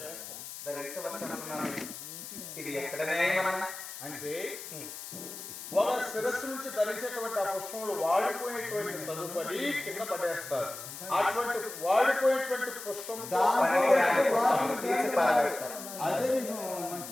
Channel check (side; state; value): left; noise; hiss, 11 dB below the sound